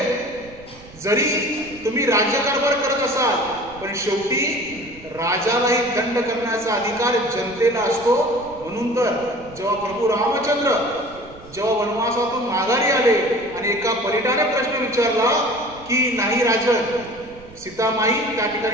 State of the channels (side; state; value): right; noise; rumble, 21 dB below the sound